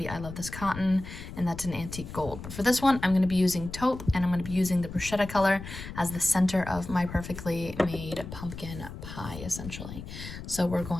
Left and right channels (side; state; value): left; noise; rumble, 11 dB below the sound